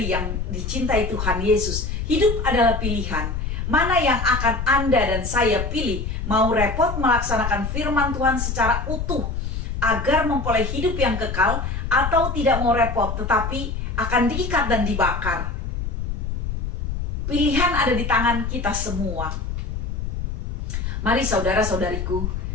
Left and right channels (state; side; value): noise; left; rumble, 3 dB below the sound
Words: yang dicintai Tuhan Yesus, hidup adalah pilihan. Mana yang akan Anda dan saya pilih? Mau repot melaksanakan firman Tuhan secara utuh agar memperoleh hidup yang kekal, atau tidak mau repot tetapi akan diikat dan dibakar? Pilihan ada di tangan kita semua. Mari saudara-saudariku,